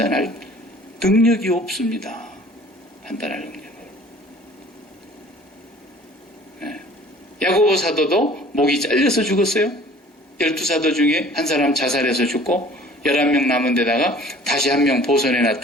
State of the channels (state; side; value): normal; both; correlation 0.49